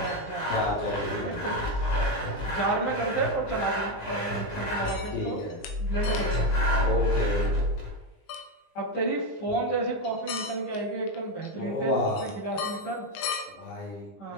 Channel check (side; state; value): right; late; 19 ms